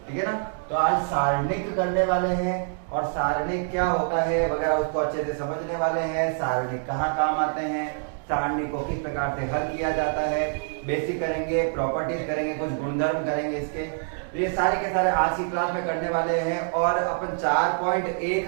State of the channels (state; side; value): silent; left; digital silence